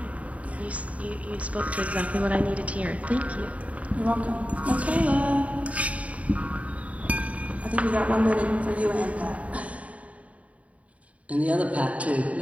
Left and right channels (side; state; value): left; late; 0.067 ms